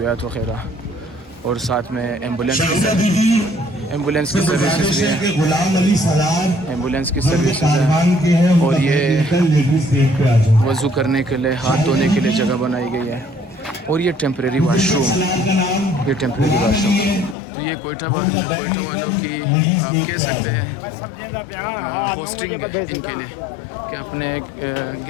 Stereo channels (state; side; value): drops out; right; at 17.4 s